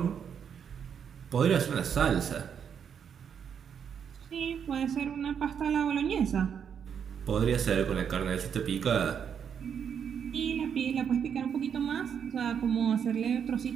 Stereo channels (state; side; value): quieter; left; 7.7 dB